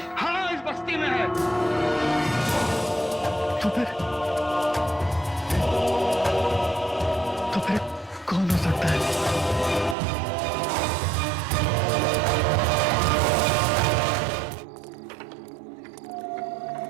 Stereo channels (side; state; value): left; drops out; at 10.0 s